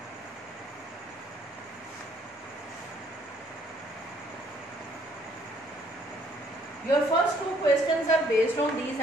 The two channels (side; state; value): both; normal; correlation 0.64